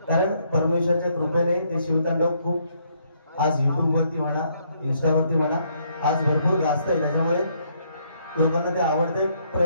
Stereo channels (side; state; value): both; inverted; correlation -0.70